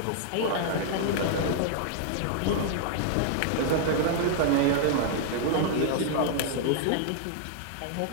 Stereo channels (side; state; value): both; different; correlation -0.01